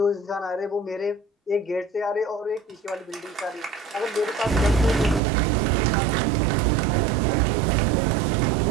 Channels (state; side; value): drops out; left; at 5.2 s